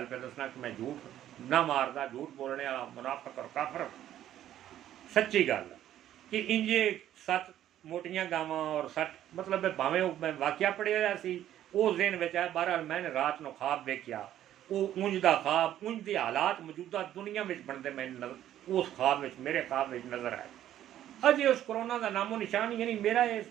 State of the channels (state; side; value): quieter; left; 11.9 dB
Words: पे दसना कि मैं झूठ ना मारदा, झूठ बोलने वाला मुनाफिक और काफर। सच्ची गल कि इंजे 7 मोटियां गावां और 7 मतलब भावें मैं वाक्या पढ़िया सी उस दिन में आया। बहरहाल मैंने रात को ख्वाब वेख्या, वो उंज का ख्वाब उंज के हालात मौजूदा दुनिया में बनते मैं उस ख्वाब में मेरे ख्वाब में नजर आए। अजे उस कोरोना का नामो निशान ही नहीं। मेरा ये